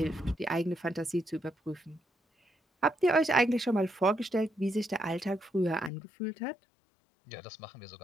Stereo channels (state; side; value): drops out; right; at 5.9 s